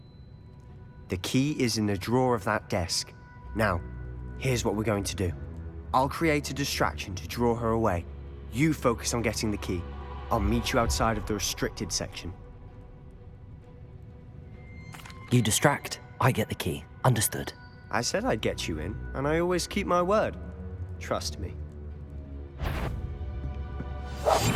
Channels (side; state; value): both; identical; correlation 1.00